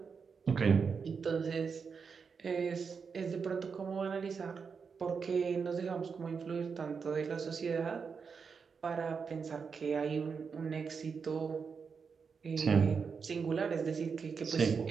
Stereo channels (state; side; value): quieter; left; 5.7 dB